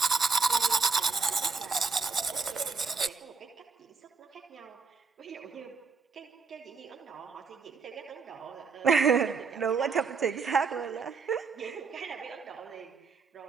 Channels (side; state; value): left; quieter; 5.0 dB